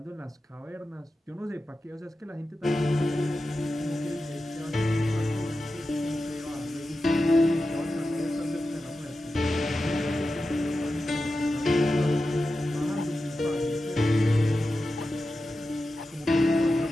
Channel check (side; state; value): both; normal; correlation 0.92